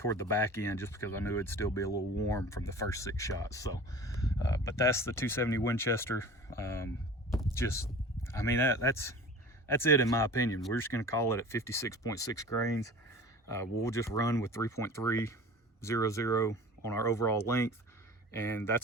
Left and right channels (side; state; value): both; normal; correlation 0.40